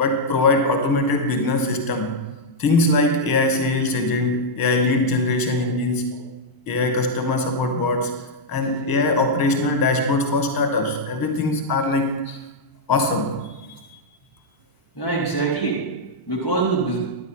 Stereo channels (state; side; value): late; right; 1.0 ms